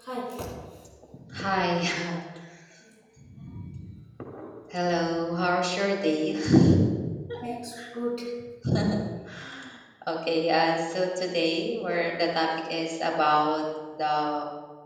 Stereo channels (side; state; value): both; identical; correlation 1.00